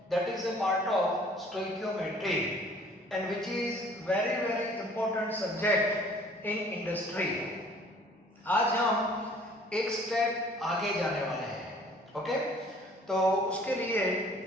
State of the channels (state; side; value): normal; both; correlation 0.54